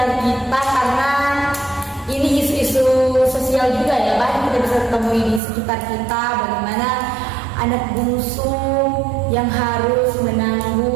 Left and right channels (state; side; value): drops out; left; at 5.4 s